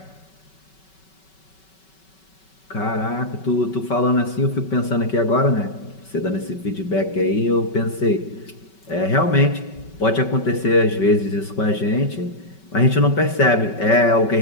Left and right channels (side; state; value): right; late; 5.3 ms